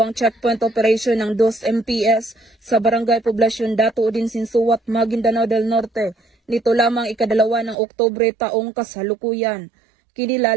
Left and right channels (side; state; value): left; drops out; at 7.8 s